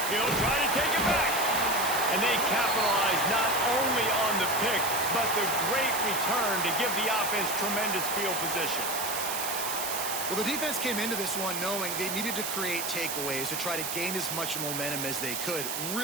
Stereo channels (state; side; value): noise; right; hiss, 3 dB below the sound